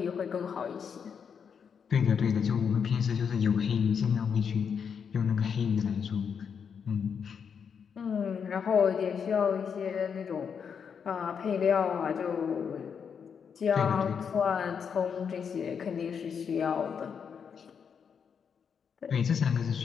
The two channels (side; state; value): right; quieter; 6.8 dB